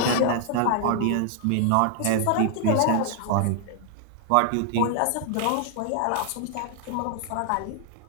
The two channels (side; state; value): both; different; correlation 0.00